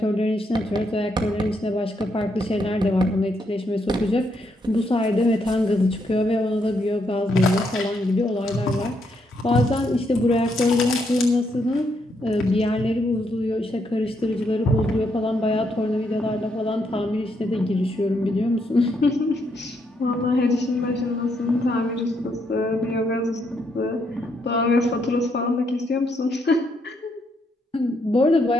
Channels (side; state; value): both; normal; correlation 0.76